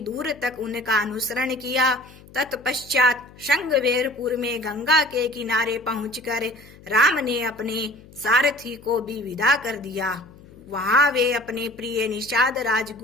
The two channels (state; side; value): noise; left; hum, 22 dB below the sound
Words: तक उनका अनुसरण किया। तत्पश्चात श्रृंगवेरपुर में गंगा के किनारे पहुंचकर राम ने अपने सारथी को भी विदा कर दिया। वहां वे अपने प्रिय निषाद